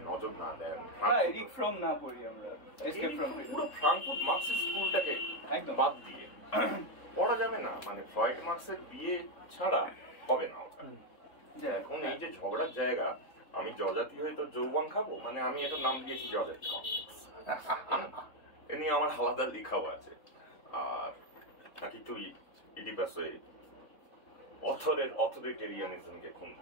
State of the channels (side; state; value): right; late; 3.7 ms